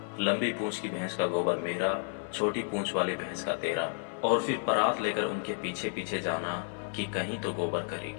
लंबी पूंछ की भैंस का गोबर मेरा, छोटी पूंछ वाली भैंस का तेरा, और फिर परात लेकर उनके पीछे पीछे जाना कि कहीं तो गोबर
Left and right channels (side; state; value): right; silent; 57 dB below the other